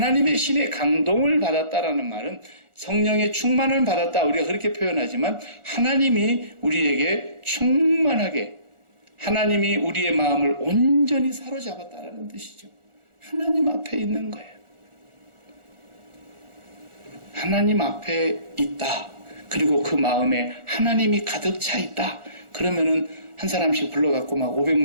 신의 감동을 받았다라는 말은 성령의 충만을 받았다 우리가 그렇게 표현하지만 하나님이 우리에게 충만하게 하나님이 우리의 마음을 온전히 사로잡았다라는 뜻이죠. 하나님 앞에 있는 거예요. 하나님 앞에 있다. 그리고 그 마음에 하나님이 가득 차 있다. 그러면은 한 사람씩 불러갖고 막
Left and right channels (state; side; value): late; left; 1.4 ms